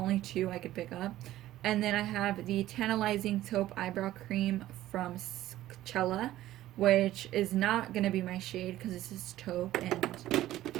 two I could pick up. And then I have the Tantalizing Taupe Eyebrow Cream from Cella, which is not going to be my shade because this is taupe, and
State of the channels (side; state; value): left; quieter; 14.5 dB